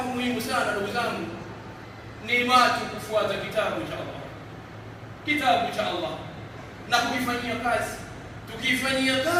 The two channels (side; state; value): both; identical; correlation 1.00